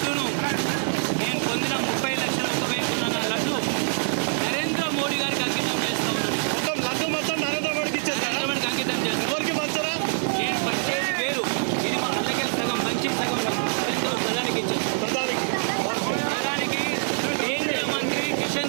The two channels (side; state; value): left; silent; 59 dB below the other